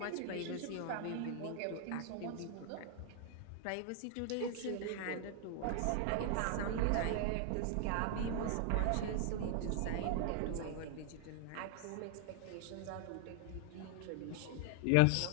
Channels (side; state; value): both; different; correlation 0.00